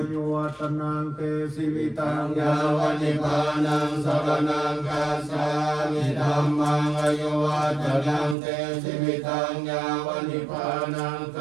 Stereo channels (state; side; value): drops out; left; at 8.3 s